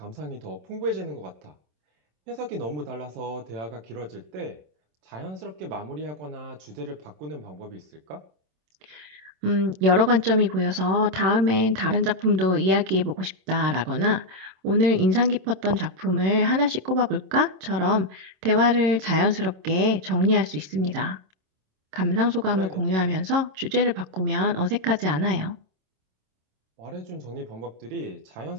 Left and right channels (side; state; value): left; late; 27 ms